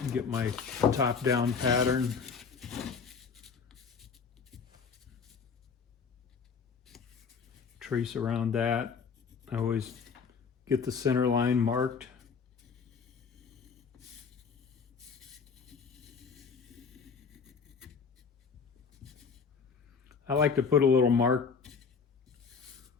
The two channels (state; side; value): quieter; right; 5.8 dB